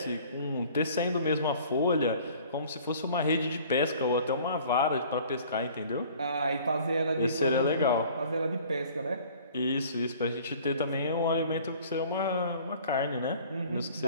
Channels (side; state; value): both; inverted; correlation -0.50